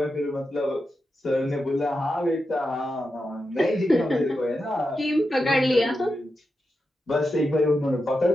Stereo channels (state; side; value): normal; both; correlation 0.89